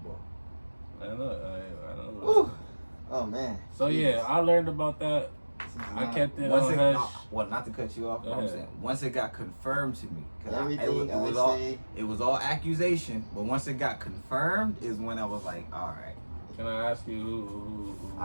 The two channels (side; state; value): both; inverted; correlation -1.00